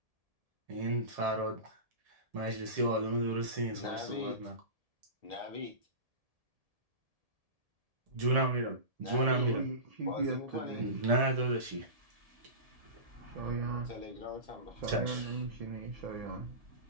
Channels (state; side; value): late; left; 1.7 ms